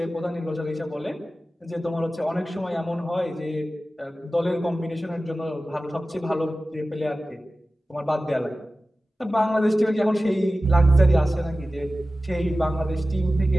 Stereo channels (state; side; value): normal; both; correlation 0.95